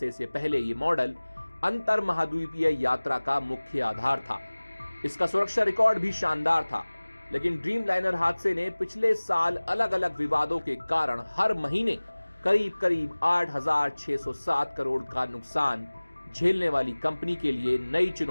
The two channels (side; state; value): both; inverted; correlation -1.00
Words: से पहले ये मॉडल अंतर महाद्वीपीय यात्रा का मुख्य आधार था। इसका सुरक्षा रिकॉर्ड भी शानदार था, लेकिन ड्रीमलाइनर हादसे ने पिछले साल अलग अलग विवादों के कारण हर महीने करीब 8,607 करोड़ का नुकसान झेलने वाली कंपनी के लिए नई